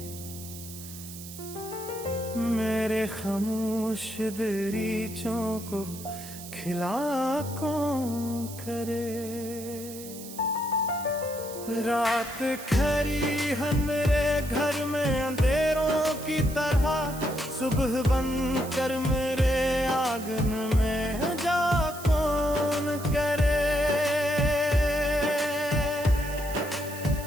मेरे खामोश दरीचों को खिला कौन करे। रात खरी है मेरे घर में अंधेरों की तरह, सुबह बन कर मेरे आंगन में जा कौन करे।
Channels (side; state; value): right; noise; hiss, 13 dB below the sound